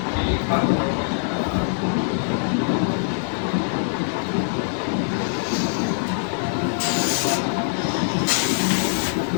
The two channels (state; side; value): silent; right; digital silence